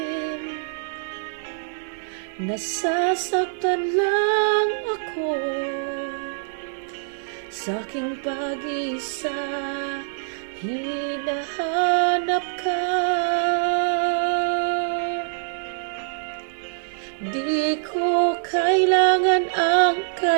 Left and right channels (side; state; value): left; silent; digital silence